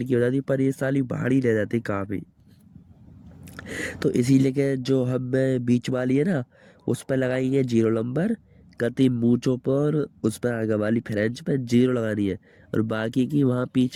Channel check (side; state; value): both; identical; correlation 1.00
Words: हो जाती है, पर ये साली भारी रह जाती है काफ़ी। तो इसीलिए के जो हमें बीच वाली है ना, उस पर लगाएंगे 0 नंबर, कति मूंछों पर उस पर आगे वाली फ्रेंच पे 0 लगानी है, और बाकी की वहाँ